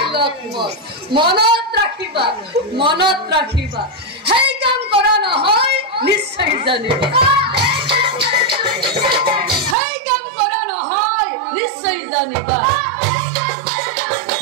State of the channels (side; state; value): left; drops out; at 9.8 s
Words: লক্ষ্মণ, মনত ৰাখিবা সেই কাম কৰা নহয় নিশ্চয় জানিবা, সেই কাম কৰা নহয় নিশ্চয় জানিবা।